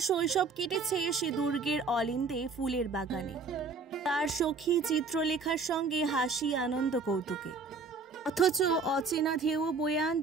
শৈশব কেটেছে সে দুর্গের অলিন্দে ফুলের বাগানে, তার সখী চিত্রলেখার সঙ্গে হাসি, আনন্দ, কৌতুকে। অথচ অচেনা ঢেউ বয়ে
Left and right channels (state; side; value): quieter; left; 4.2 dB